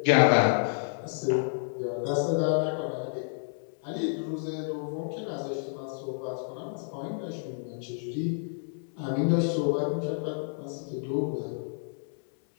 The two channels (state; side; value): silent; right; digital silence